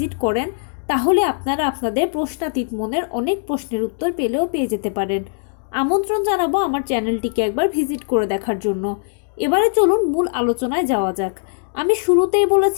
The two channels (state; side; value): silent; right; digital silence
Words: করেন তাহলে আপনারা আপনাদের প্রশ্নাতীত মনের অনেক প্রশ্নের উত্তর পেয়ে যেতে পারেন। আমন্ত্রণ জানাবো আমার চ্যানেলটিকে একবার ভিজিট করে দেখার জন্য। এবারে চলুন মূল আলোচনায় যাওয়া যাক। আমি শুরুতেই